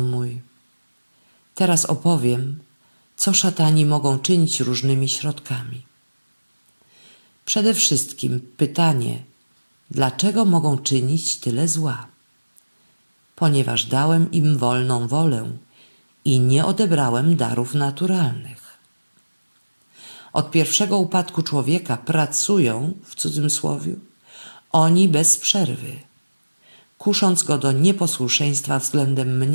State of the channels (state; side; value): inverted; both; correlation -1.00